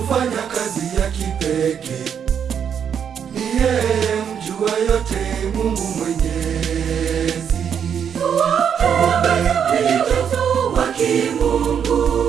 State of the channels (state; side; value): quieter; left; 7.9 dB